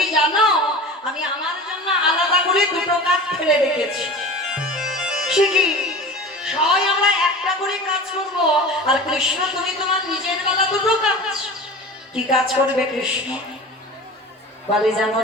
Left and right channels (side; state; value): both; normal; correlation 0.35